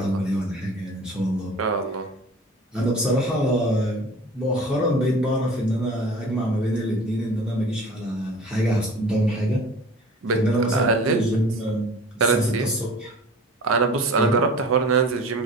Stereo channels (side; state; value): both; normal; correlation 0.42